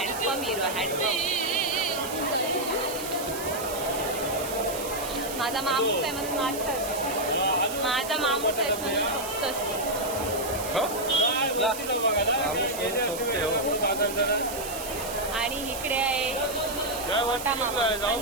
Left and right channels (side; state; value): right; noise; hiss, 9 dB below the sound